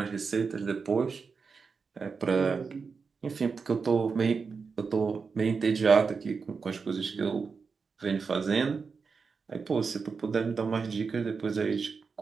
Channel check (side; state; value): left; quieter; 5.1 dB